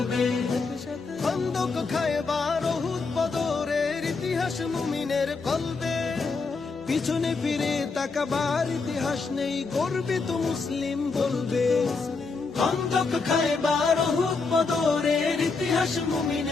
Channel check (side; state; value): right; quieter; 4.3 dB